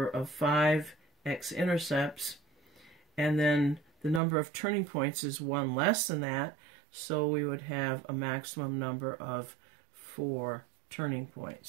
of 5 x-intercepts. And then the number of turning points is 1 less than that, so we would have a maximum number of 4 turning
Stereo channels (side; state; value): left; drops out; at 4.2 s